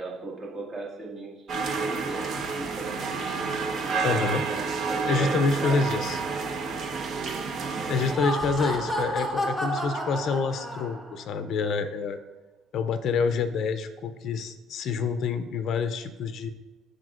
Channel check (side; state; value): both; normal; correlation 0.62